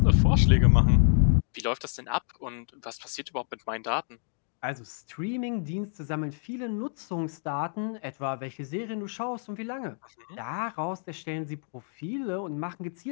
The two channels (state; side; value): silent; right; digital silence